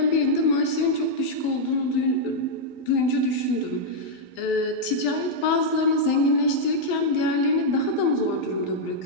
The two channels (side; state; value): right; late; 11 ms